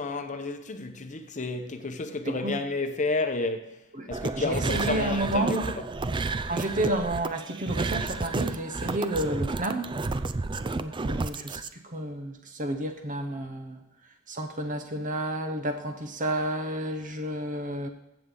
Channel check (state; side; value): normal; both; correlation 0.28